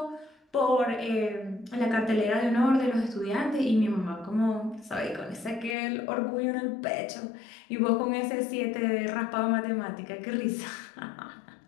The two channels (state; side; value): drops out; right; at 5.8 s